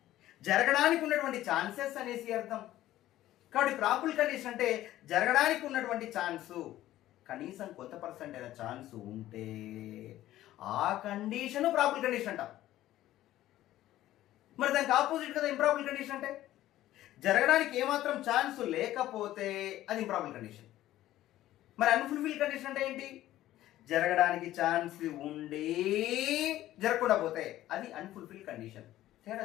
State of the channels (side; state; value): right; quieter; 14.3 dB